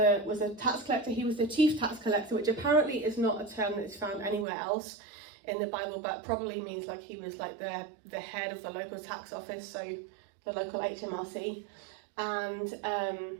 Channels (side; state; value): left; drops out; at 4.5 s